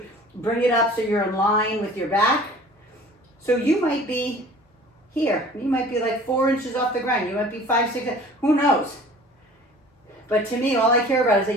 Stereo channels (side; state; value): both; normal; correlation 0.46